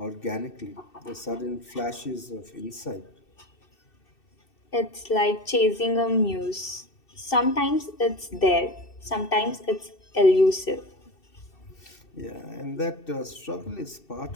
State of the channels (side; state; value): right; late; 2.7 ms